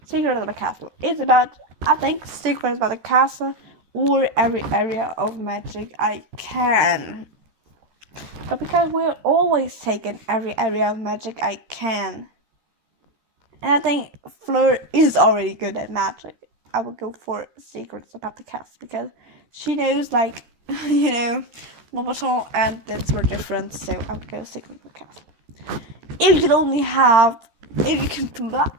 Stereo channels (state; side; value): late; left; 13 ms